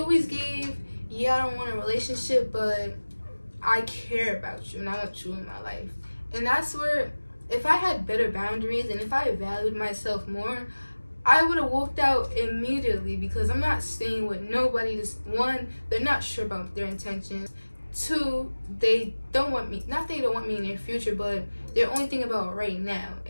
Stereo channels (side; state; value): both; inverted; correlation -1.00